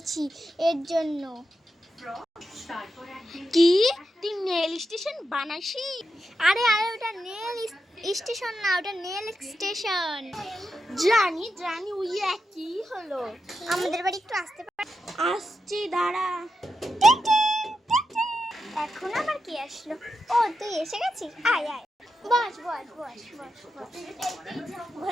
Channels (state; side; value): normal; both; correlation 0.87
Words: এর জন্য। কি, তুই নেল স্টেশন বানাইছি? আরে আরে, ওটা নেল স্টেশন না, ওটা নেল এক্সটেনশন। জানি জানি, ওই কি হলো? আমাদের বাড়ি একটু আসতে পার? আসছি, দাঁড়া। এখন আবার কি আসলো? ও, তুই এসে গেছিস? আয় আয়, বস বস বস বস বস।